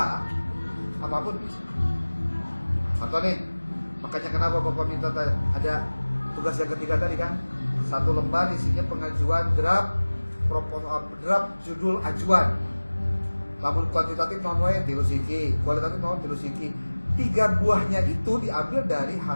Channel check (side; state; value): both; inverted; correlation -1.00